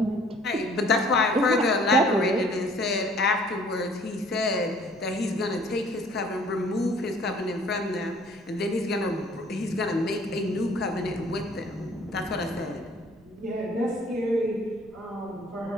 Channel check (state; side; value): noise; right; rumble, 27 dB below the sound